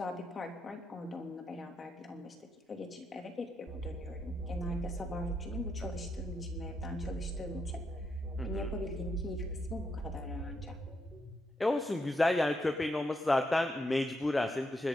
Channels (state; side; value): normal; both; correlation 0.80